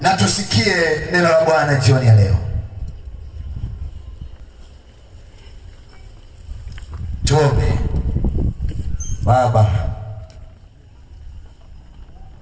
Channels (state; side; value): identical; both; correlation 1.00